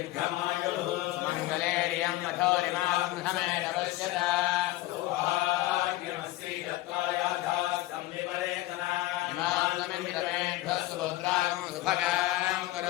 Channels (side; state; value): right; quieter; 17.2 dB